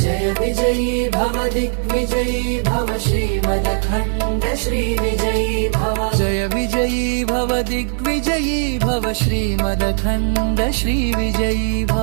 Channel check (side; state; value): left; silent; 67 dB below the other